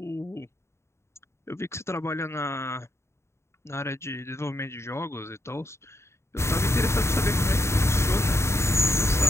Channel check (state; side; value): late; right; 0.13 ms